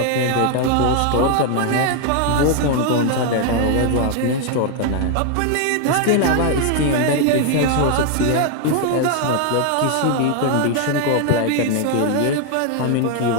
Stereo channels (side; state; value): both; different; correlation 0.00